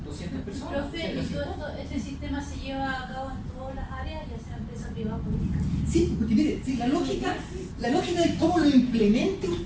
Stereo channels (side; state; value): both; identical; correlation 1.00